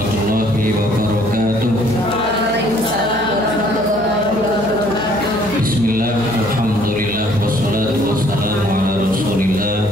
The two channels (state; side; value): noise; right; hum, 16 dB below the sound